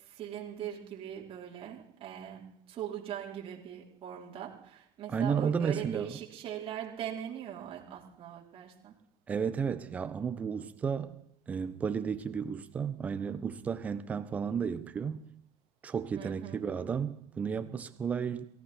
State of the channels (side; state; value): left; quieter; 6.7 dB